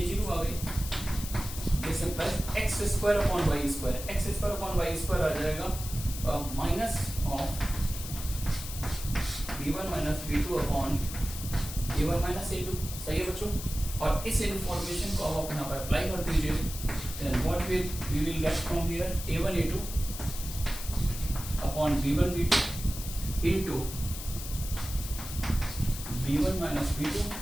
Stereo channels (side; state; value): left; noise; hiss, 9 dB below the sound